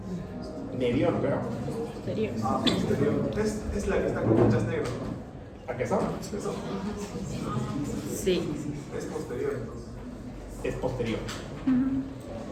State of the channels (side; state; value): both; identical; correlation 1.00